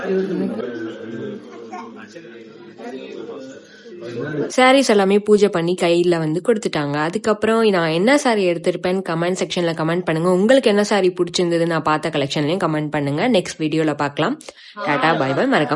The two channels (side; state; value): both; identical; correlation 1.00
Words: சாரீஸ் எல்லாமே பூஜை பண்ணி கையில் வந்து கொடுத்துட்டாங்க. அதுக்கப்புறம் நான் என்ன சாரீ எடுத்திருப்பேன்னு கமெண்ட் செக்ஷனில் கமெண்ட் பண்ணுங்கள். உங்களுக்கு என்ன சாரீ பிடிச்சிருந்தது நான் பார்த்த கலெக்ஷன்லையும் கமெண்ட் பண்ணுங்கள். நெக்ஸ்ட் வீடியோவில் பார்க்கலாம். Tata, bye bye.